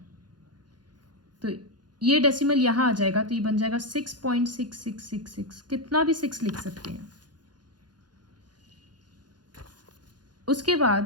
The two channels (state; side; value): late; left; 0.70 ms